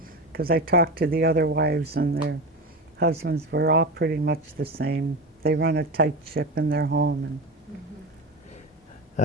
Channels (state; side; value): normal; both; correlation 0.23